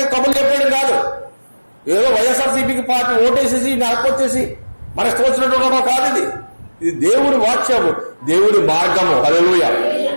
కబుర్లు చెప్పేయడం కాదు. ఏదో వైఎస్ఆర్సీపీకి పార్టీ ఓటేసేసి నడపొచ్చేసి మన ఇష్టం వచ్చినట్టు కాదు. ఇది దేవుడి వాక్యము, దేవుడి మార్గము. హల్లెలూయా.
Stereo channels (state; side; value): inverted; both; correlation -1.00